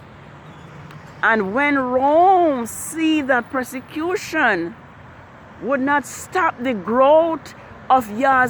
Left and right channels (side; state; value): both; identical; correlation 1.00